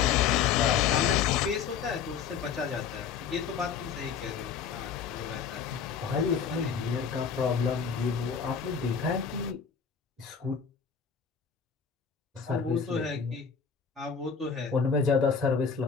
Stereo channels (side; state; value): right; quieter; 6.6 dB